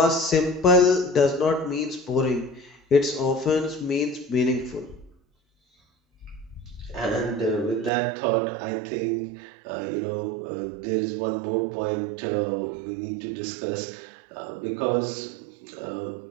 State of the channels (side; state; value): left; drops out; at 7.9 s